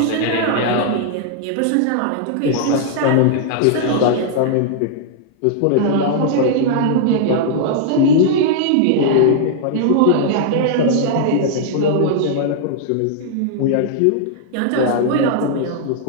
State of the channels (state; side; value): different; both; correlation -0.01